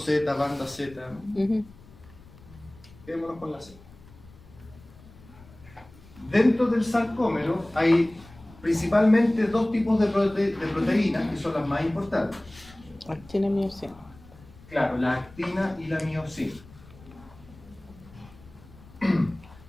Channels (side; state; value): left; noise; rumble, 23 dB below the sound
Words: banda Z. Quedémonos con la Z. Dentro del sarcómero hay principalmente dos tipos de proteínas que son las más importantes. Actina y miosina. Claro, la actina y la miosina.